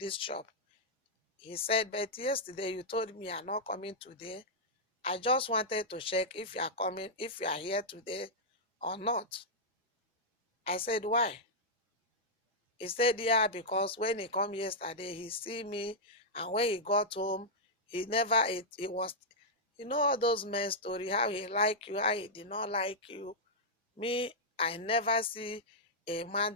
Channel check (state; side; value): normal; both; correlation -0.07